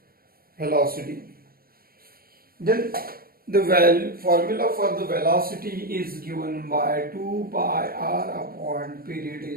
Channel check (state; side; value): late; left; 0.43 ms